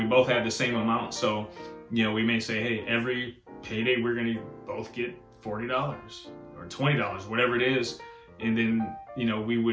both have the same amount. So, we may say, hey, every payday we're going to both get $40 or $20, whatever it is. And then,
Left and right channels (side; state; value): both; identical; correlation 1.00